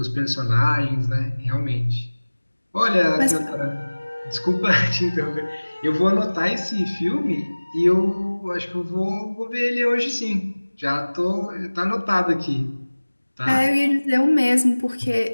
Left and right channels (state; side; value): inverted; both; correlation -1.00